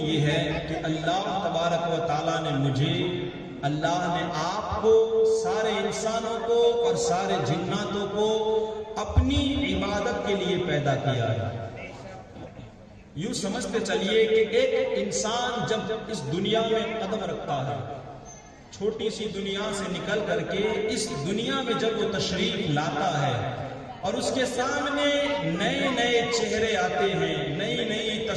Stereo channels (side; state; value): both; identical; correlation 1.00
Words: ہے کہ اللہ تبارک و تعالیٰ نے مجھے، اللہ نے آپ کو، سارے انسانوں کو اور سارے جناتوں کو اپنی عبادت کے لیے پیدا کیا ہے۔ یوں سمجھتے چلیے کہ ایک انسان جب اس دنیا میں قدم رکھتا ہے، چھوٹی سی دنیا سے نکل کر کے اس دنیا میں جب وہ تشریف لاتا ہے اور اس کے سامنے نئے نئے چہرے آتے ہیں، نئی نئی